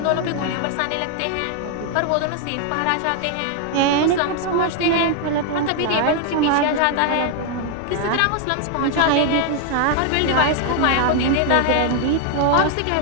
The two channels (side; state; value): both; different; correlation 0.00